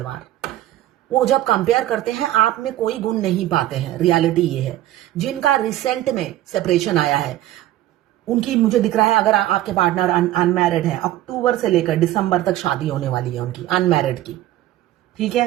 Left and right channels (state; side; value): quieter; left; 14.3 dB